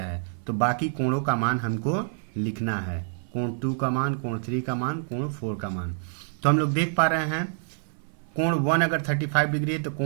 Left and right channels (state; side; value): silent; left; 57 dB below the other